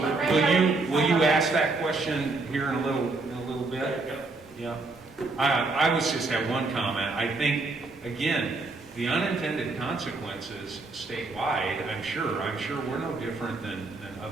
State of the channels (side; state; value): left; quieter; 3.5 dB